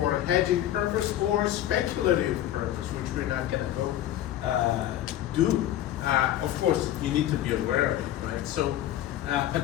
hedging purpose or speculative purpose, which we're not going to go do. Of course, you need to be aware of it, right? So, but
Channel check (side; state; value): right; quieter; 12.6 dB